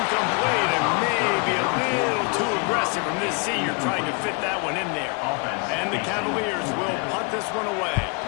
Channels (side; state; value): right; quieter; 33.6 dB